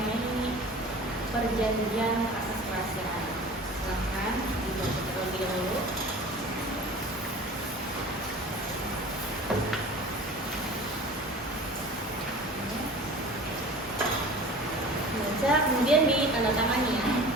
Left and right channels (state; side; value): normal; both; correlation 0.41